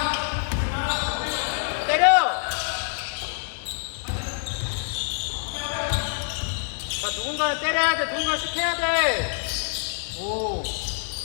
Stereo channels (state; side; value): silent; right; digital silence